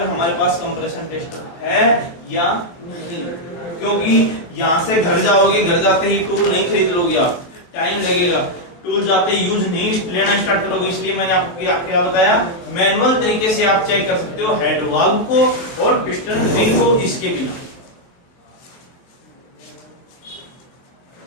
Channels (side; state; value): right; late; 23 ms